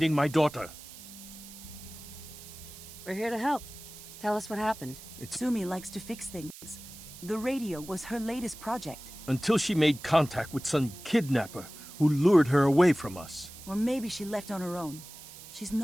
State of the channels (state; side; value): noise; right; hiss, 16 dB below the sound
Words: my daughter. We're here to help. Tell us what happened. Sumi likes to fix things. The radio was her latest project. Until she made contact with some kidnapper who lured her away from us. Or maybe she left on her own. She's